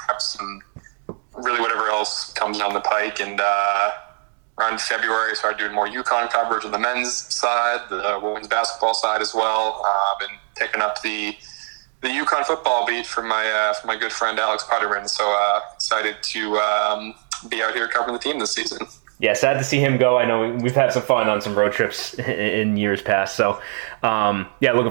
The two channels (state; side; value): silent; left; digital silence